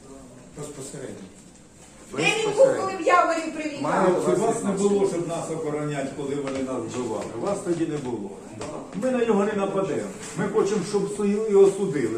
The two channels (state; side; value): identical; both; correlation 1.00